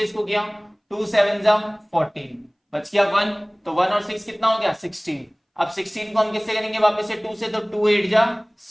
इसको किया, 2 7 जा 14, बच गया 1, तो 1 और 6 कितना हो गया 16। अब 16 को हम किससे करेंगे वापस से 2 से, तो 2 8 जा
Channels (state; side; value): identical; both; correlation 1.00